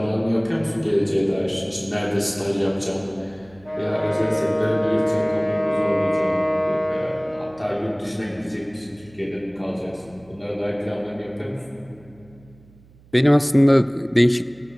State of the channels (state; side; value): noise; right; hum, 26 dB below the sound